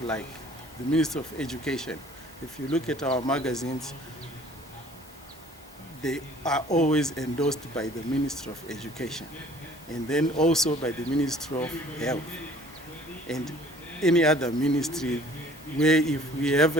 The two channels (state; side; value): normal; both; correlation 0.53